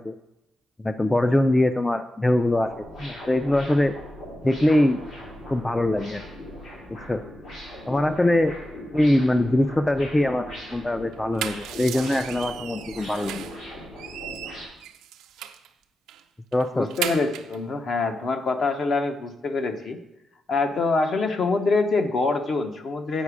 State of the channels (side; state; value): both; normal; correlation 0.90